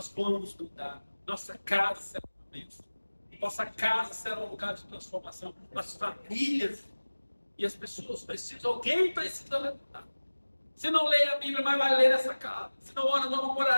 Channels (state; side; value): inverted; both; correlation -1.00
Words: vamos mudar. Nossa casa será uma bênção. Nossa casa será um lugar de transformação. As famílias e as pessoas precisam. Alguém precisa levantar. Se não lê a Bíblia, mas vai ler essa casa. Se não ora, não vamos